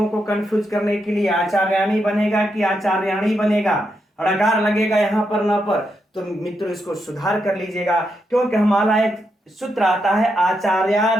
को कंफ्यूज करने के लिए, आचार्याणी बनेगा कि आचार्याणी बनेगा, ड़कार लगेगा यहां पर न पर। तो मित्रों इसको सुधार कर लीजिएगा, क्योंकि हमारा एक सूत्र आता है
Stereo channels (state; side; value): normal; both; correlation 0.82